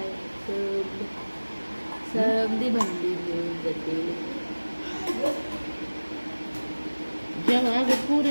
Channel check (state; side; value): inverted; both; correlation -1.00